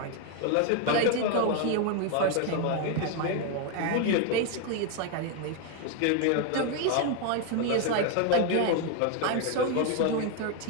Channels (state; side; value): different; both; correlation 0.01